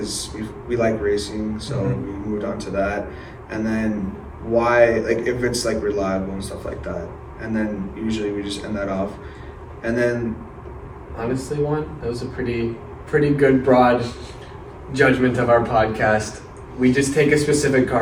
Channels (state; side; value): identical; both; correlation 1.00